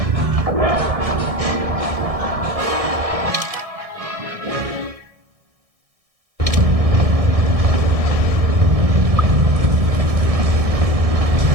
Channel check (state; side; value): late; left; 1.6 ms